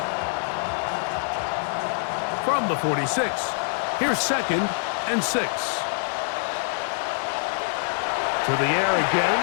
From the 46, here's 2nd and 6. To the air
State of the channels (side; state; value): right; silent; digital silence